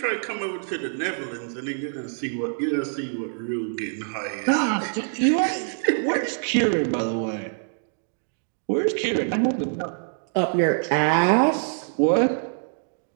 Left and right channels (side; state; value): left; silent; digital silence